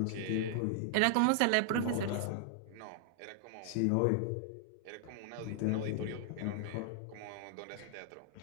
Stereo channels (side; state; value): both; different; correlation -0.01